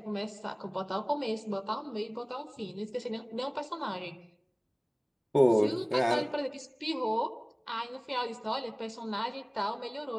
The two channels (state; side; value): identical; both; correlation 1.00